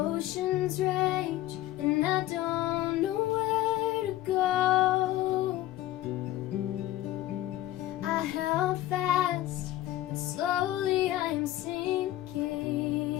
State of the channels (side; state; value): right; quieter; 14.9 dB